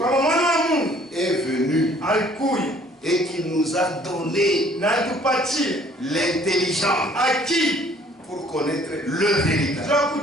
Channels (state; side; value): normal; both; correlation 0.57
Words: est venu et qu'il nous a donné l'intelligence pour connaître le véritable.